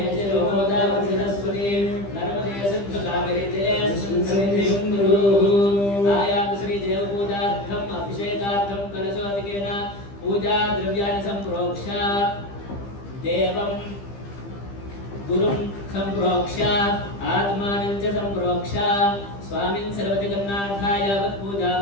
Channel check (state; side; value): late; right; 15 ms